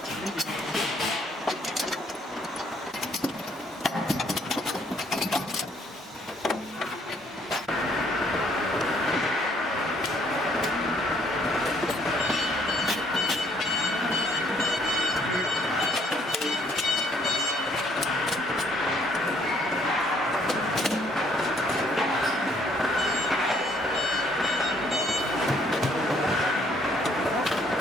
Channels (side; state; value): both; normal; correlation 0.65